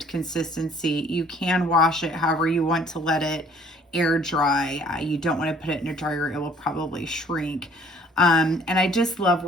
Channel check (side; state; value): both; normal; correlation 0.56